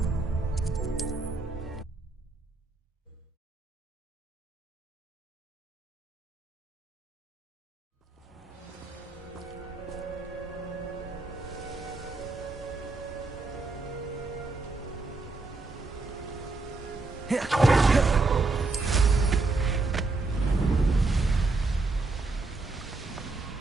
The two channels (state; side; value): quieter; left; 3.6 dB